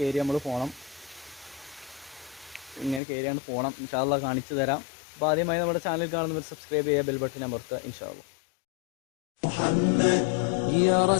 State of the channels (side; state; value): right; drops out; at 3.0 s